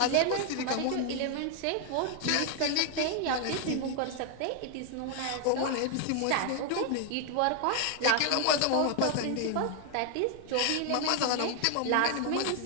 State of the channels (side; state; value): both; different; correlation 0.00